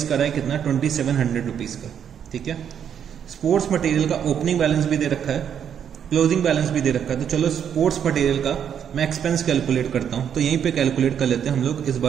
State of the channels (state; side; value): quieter; left; 8.5 dB